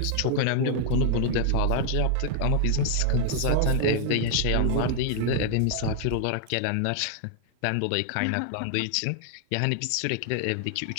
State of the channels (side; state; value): both; different; correlation 0.00